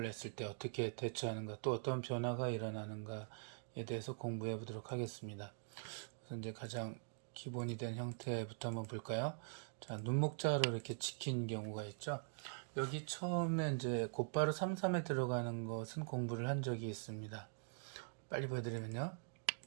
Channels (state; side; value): silent; left; digital silence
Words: 했을 때 어떻게 대처하는가, 또 어떤 변화가 일어나는가에 대해서 공부해 보도록 하겠습니다. 그래서 이제 가장 기본이 된 형태부터 한번 볼까요? 자, 눈목자로 이렇게 지킨 경우가 있죠. 여기 처음에 이제 곧바로 3-3에 들어가는 것은 공부를 한 적이 있습니다. 빨리 보여드리면요.